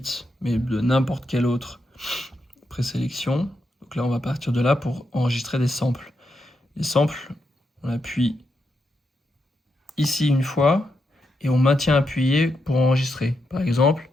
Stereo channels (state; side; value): normal; both; correlation 0.84